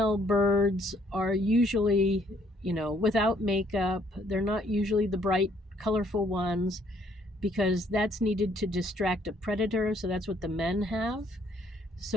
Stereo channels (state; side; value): normal; both; correlation 0.66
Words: birds are usually, without makeup. They're not usually the bright, colorful ones because that's needed to distract a predator. So that's what the men have.